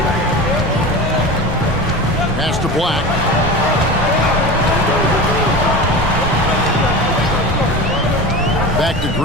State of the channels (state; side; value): normal; both; correlation 0.30